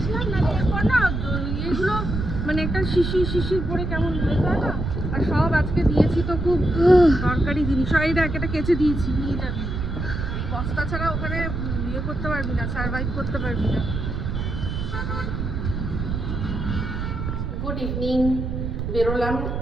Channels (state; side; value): noise; right; rumble, 3 dB below the sound